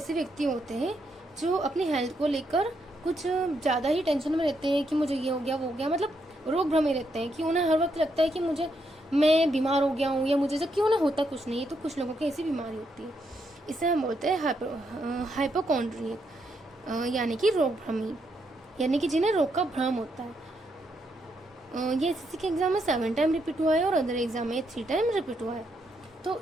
व्यक्ति होते हैं जो अपनी हेल्थ को लेकर कुछ ज़्यादा ही टेंशन में रहते हैं कि मुझे ये हो गया वो हो गया, मतलब रोग भ्रमे रहते हैं कि उन्हें हर वक्त लगता है कि मैं बीमार हो गया हूँ या मुझे, जबकि उन्हें होता कुछ नहीं है। तो कुछ लोगों की ऐसी बीमारी होती है, इसे हम बोलते हैं हाइपोकॉन्ड्रियक, यानी कि रोग भ्रमी, यानी कि जिन्हें रोग का भ्रम होता है। ये एसएससी के एग्जाम में 7 टाइम रिपीट हुआ है और अदर एग्जाम में 3 टाइम रिपीट हुआ है। तो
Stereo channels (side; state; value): both; normal; correlation 0.78